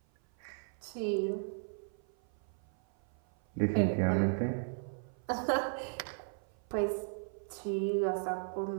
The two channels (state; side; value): silent; left; 54 dB below the other